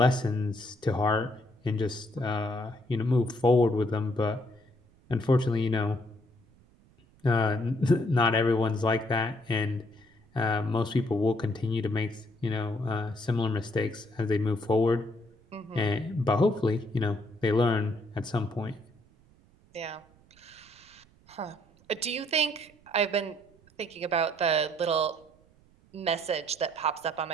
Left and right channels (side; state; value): right; noise; rumble, 29 dB below the sound